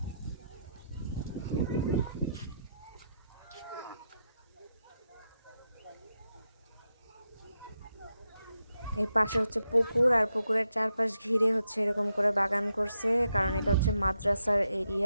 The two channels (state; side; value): inverted; both; correlation -0.84